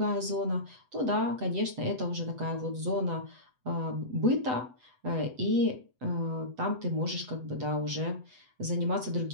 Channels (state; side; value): late; left; 8.0 ms